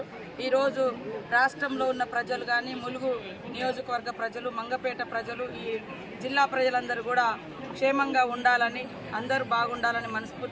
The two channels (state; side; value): identical; both; correlation 1.00